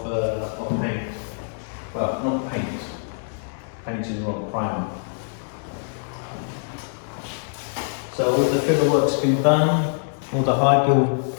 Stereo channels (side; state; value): right; silent; 63 dB below the other